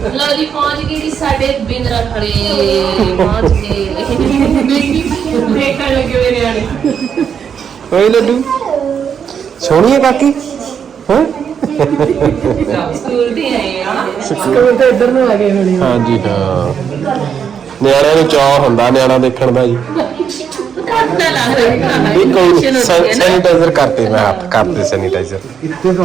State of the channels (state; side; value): quieter; left; 7.5 dB